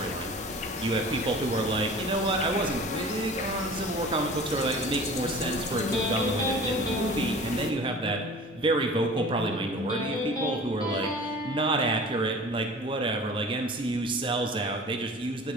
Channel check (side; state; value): both; normal; correlation 0.42